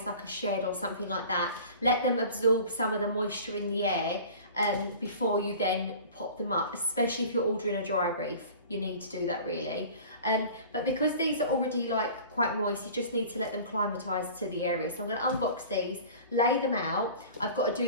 like a shed or something like that. Let them absorb some of the moisture in the air before you then pop them up, especially if you're ordering a dry reef. You need to do that really. But because these are already like quite moist, you just need to let them acclimatise to the area. So I'm going to unbox these, lay them out. I've got to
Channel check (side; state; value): both; inverted; correlation -0.41